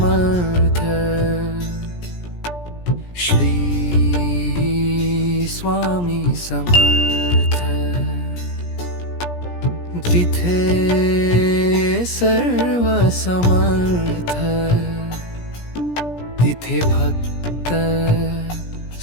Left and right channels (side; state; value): right; late; 17 ms